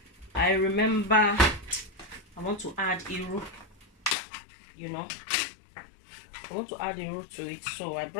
I remember I want to add iru, you know, I want to add the root to it, so I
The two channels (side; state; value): right; drops out; at 4.2 s